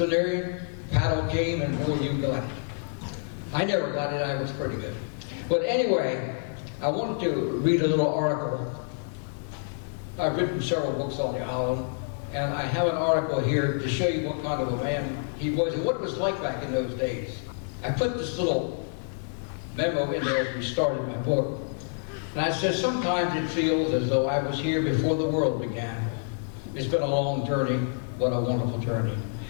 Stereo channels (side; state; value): right; silent; 60 dB below the other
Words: paddle game, and boy, you got it. I never got it, I was pretty good. But anyway, I wanted to read a little article. I've written several books on the island, and I have an article here to show you what kind of a man he was and what it was like back in those days. I put this little memo in there as we started my book. And I said, sometimes it feels as though I was here before the world began. It's been a long journey, what a wonderful journey.